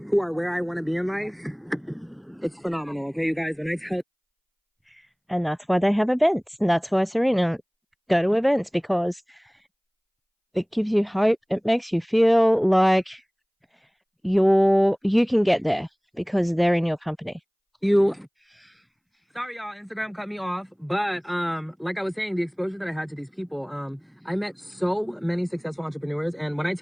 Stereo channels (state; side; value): identical; both; correlation 1.00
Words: who are where I want to be in life, it's phenomenal, okay, you guys? When I tell. And that's why they have events. And that's why Serena go to events, because it gives you hope. It makes you feel like you can get there because they're in your company. Sorry, y'all, Instagram cut me off. But like I was saying, the exposure that I had to these people, I met so many successful entrepreneurs. And when I